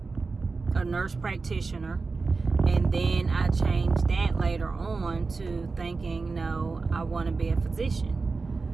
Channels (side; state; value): left; quieter; 4.2 dB